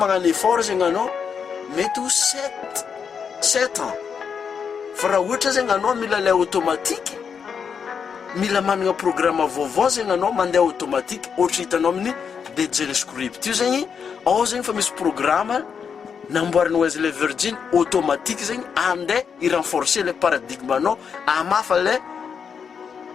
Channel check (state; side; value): quieter; right; 6.7 dB